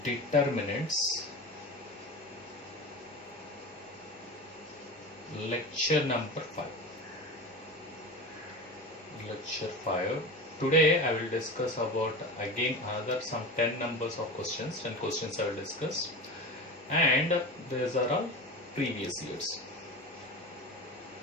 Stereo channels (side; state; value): both; normal; correlation 0.29